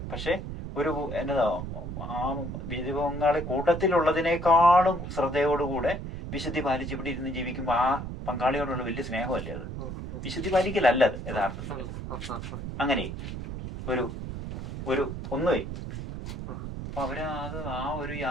പക്ഷെ ഒരു ആ ജീവിത പങ്കാളി കൂട്ടത്തിലുള്ളതിനേക്കാളും ശ്രദ്ധയോടുകൂടെ വിശുദ്ധി പാലിച്ച് ഇവിടെ ഇരുന്ന് ജീവിക്കുമ്പോൾ ആ പങ്കാളിയോടുള്ള വലിയ സ്നേഹമല്ലേ അത്. വിശുദ്ധി പാലിക്കലല്ല അത് യഥാർത്ഥത്തിൽ. അങ്ങനെ ഒരു ഒന്നുമേ അപ്പൊ അത് ആ ഒരു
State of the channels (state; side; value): noise; right; rumble, 7 dB below the sound